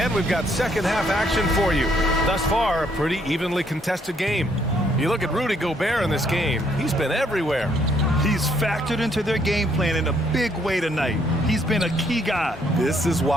we've got second half action for you. Thus far, a pretty evenly contested game. You look at Rudy Gobert in this game, he's been everywhere. He's factored into their game plan in a big way tonight. He's been a key guy. This is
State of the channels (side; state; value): both; normal; correlation 0.69